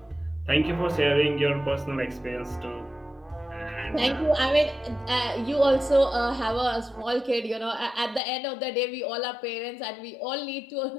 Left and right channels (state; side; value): drops out; right; at 8.2 s